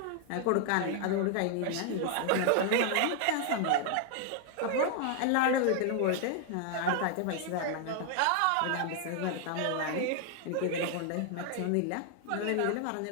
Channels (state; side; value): different; both; correlation 0.00